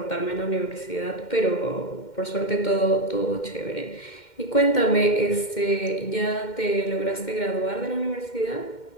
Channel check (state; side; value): late; right; 2.1 ms